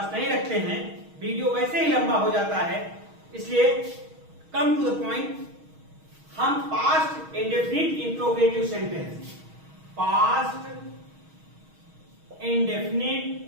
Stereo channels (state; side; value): late; left; 6.3 ms